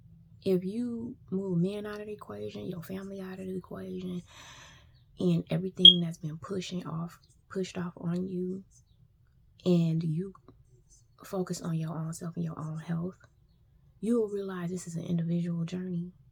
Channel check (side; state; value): both; identical; correlation 1.00